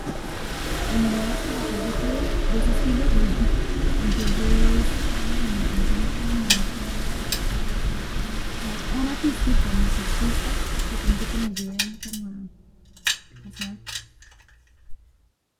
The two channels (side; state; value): both; identical; correlation 1.00